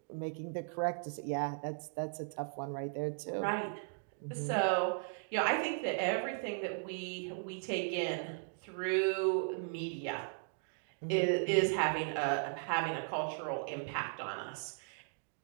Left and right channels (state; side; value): silent; left; digital silence